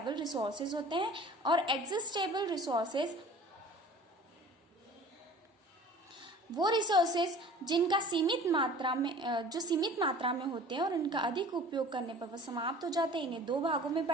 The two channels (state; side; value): normal; both; correlation 0.45